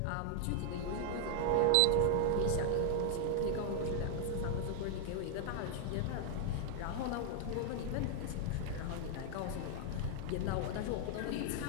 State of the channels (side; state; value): both; different; correlation 0.00